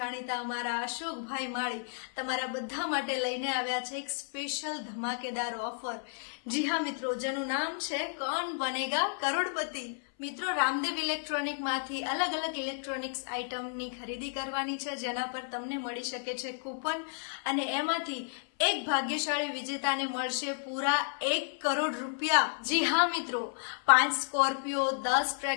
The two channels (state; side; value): silent; right; 56 dB below the other